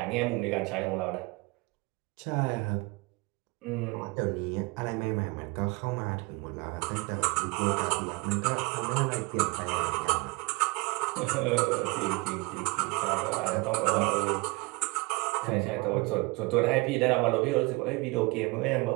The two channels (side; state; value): left; quieter; 25.9 dB